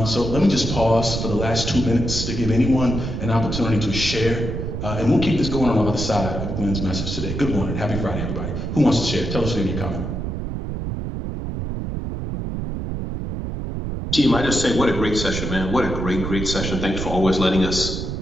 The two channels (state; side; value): noise; right; rumble, 4 dB below the sound